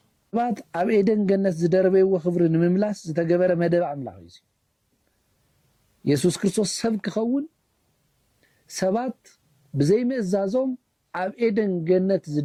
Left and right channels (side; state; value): both; identical; correlation 1.00